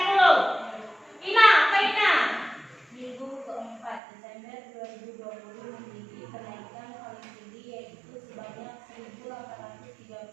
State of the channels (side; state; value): left; drops out; at 4.0 s